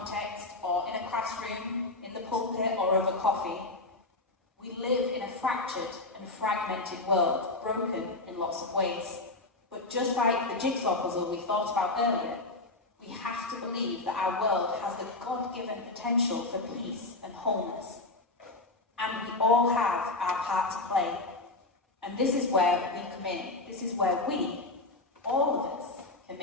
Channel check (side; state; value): right; quieter; 3.1 dB